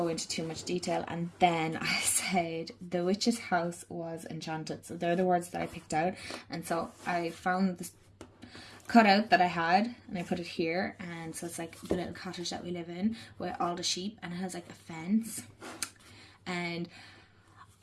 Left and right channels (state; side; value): identical; both; correlation 1.00